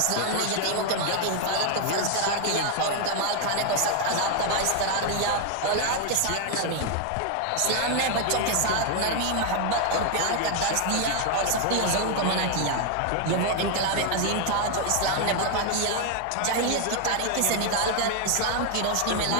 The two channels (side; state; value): both; different; correlation 0.00